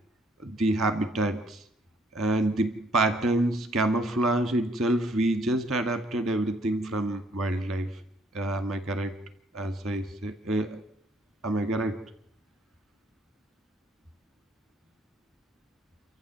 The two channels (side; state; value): both; normal; correlation 0.65